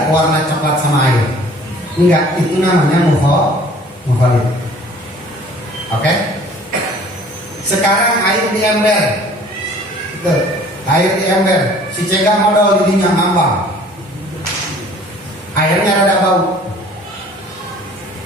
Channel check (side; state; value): both; normal; correlation 0.51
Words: warna coklat sama air? Enggak, itu namanya mukhalid. Oke? Sekarang air di ember. Air di ember, si cegah modal di dinya ngambang. Airnya rada bau.